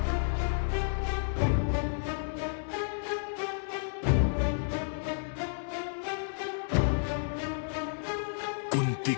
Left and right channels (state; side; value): silent; right; digital silence